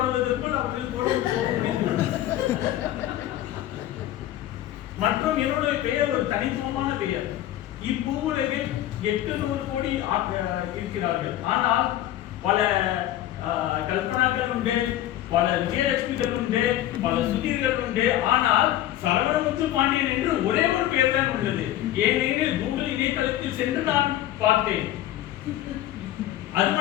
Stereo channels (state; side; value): quieter; right; 13.3 dB